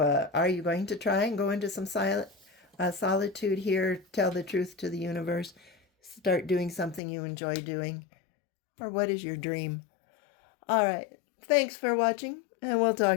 are you going to try and go into some solitude here, tell the truth to the universe, start doing something you enjoy doing? Or what is your dream? All right. Thanks for watching, and we'll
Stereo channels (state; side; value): drops out; right; at 7.0 s